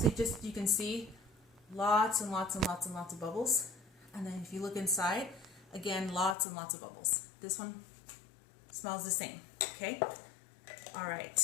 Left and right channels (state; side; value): drops out; right; at 6.4 s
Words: you can see lots and lots and lots and lots of bubbles. And then if you look inside, again, lots and lots of bubbles. This one smells the same. Okay. All right.